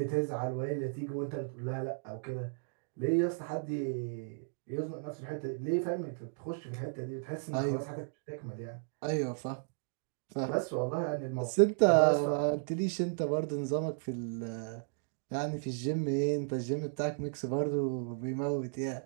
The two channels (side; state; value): left; silent; digital silence